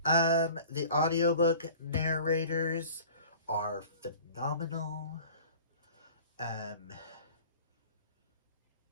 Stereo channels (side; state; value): both; inverted; correlation -0.44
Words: The audiobook narrators are phenomenal. I